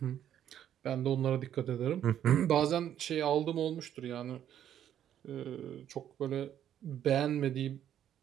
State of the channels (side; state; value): left; quieter; 10.4 dB